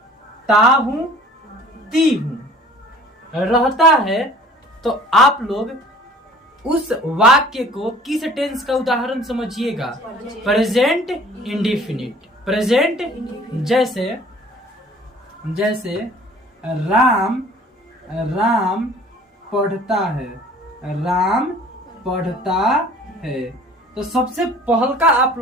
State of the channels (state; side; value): normal; both; correlation 0.50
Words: ता हूं, ती हूं रहता है। तो आप लोग उस वाक्य को किस टेंस का उदाहरण समझिएगा? Present indefinite. प्रेजेंट जैसे राम पढ़ता है, राम पढ़ता है। तो सबसे पहल का आप